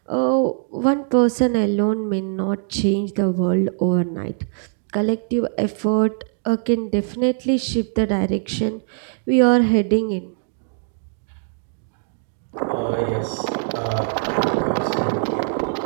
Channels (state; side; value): silent; left; 64 dB below the other